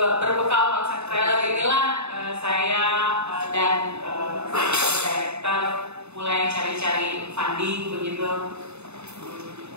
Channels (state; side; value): late; left; 0.81 ms